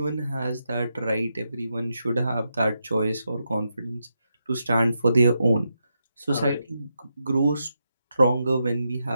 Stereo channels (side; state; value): both; inverted; correlation -0.85